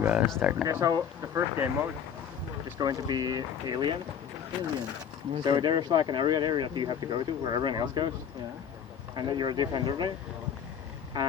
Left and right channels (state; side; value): quieter; right; 8.0 dB